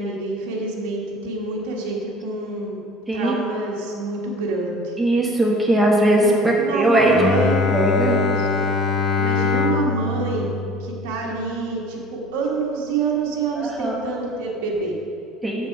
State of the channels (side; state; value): both; normal; correlation 0.45